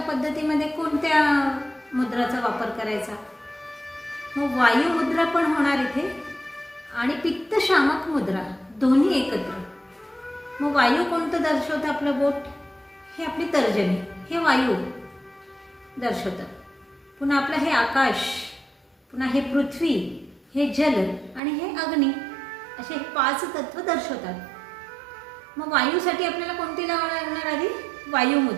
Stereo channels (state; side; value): drops out; left; at 21.4 s